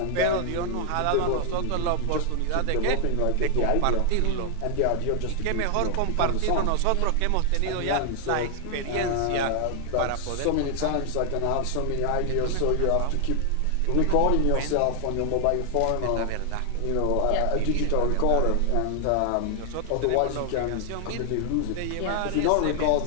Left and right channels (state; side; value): different; both; correlation 0.00